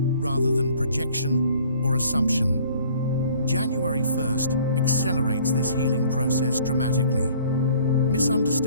than projection or assumption. January 1st accelerates this healing process dramatically.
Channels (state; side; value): inverted; both; correlation -0.55